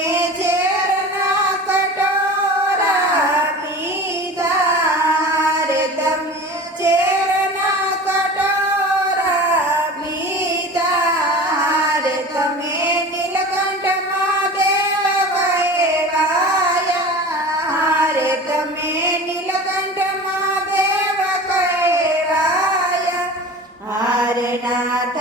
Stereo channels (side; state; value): both; normal; correlation 0.35